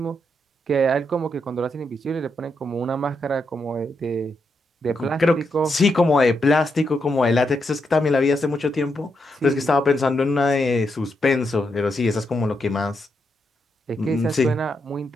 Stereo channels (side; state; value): both; normal; correlation 0.82